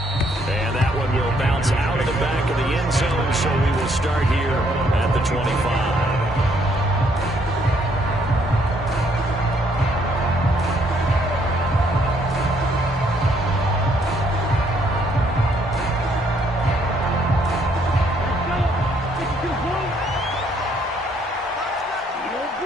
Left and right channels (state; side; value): normal; both; correlation 0.68